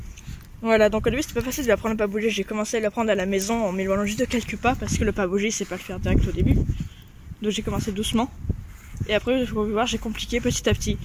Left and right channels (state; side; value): identical; both; correlation 1.00